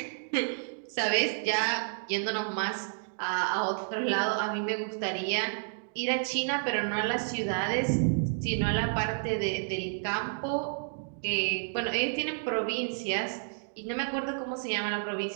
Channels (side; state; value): left; silent; digital silence